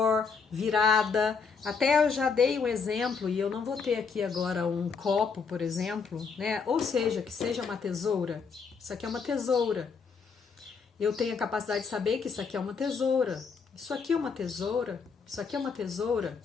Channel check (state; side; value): quieter; right; 5.4 dB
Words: virada. Até eu já dei um exemplo, e eu não vou ter aqui agora um copo, por exemplo, né? Ou seja, que seja uma tesoura. Isso aqui é uma tesoura. Eu tenho a capacidade de saber que isso aqui é uma tesoura. Isso aqui é uma tesoura. Isso aqui é uma tesoura.